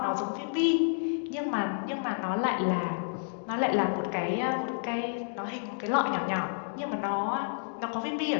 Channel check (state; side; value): silent; right; digital silence